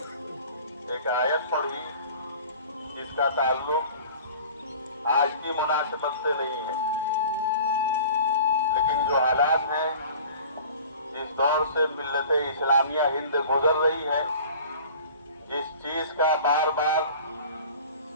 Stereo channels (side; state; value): both; inverted; correlation -0.43